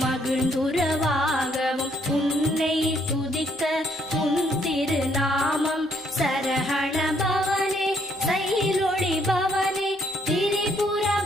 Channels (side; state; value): both; normal; correlation 0.69